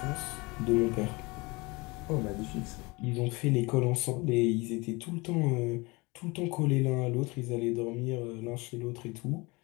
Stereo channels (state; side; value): quieter; right; 25.3 dB